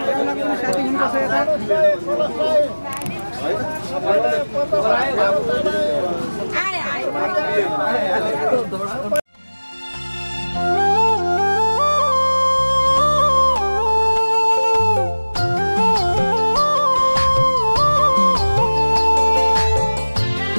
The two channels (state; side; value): inverted; both; correlation -1.00